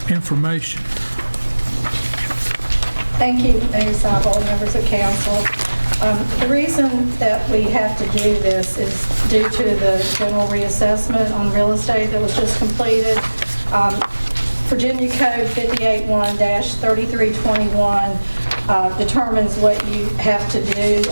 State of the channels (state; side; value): inverted; both; correlation -1.00